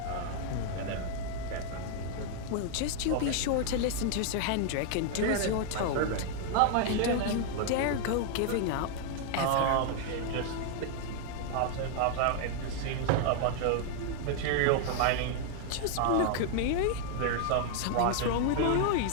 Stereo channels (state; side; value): different; both; correlation 0.00